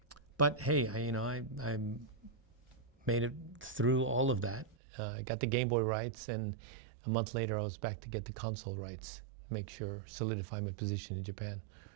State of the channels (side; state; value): left; drops out; at 4.8 s